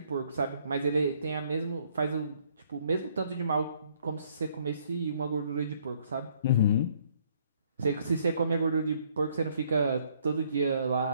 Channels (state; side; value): inverted; both; correlation -0.65